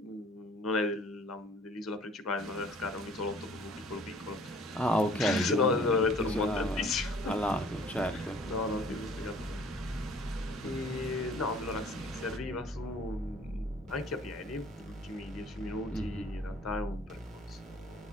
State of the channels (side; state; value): both; normal; correlation 0.54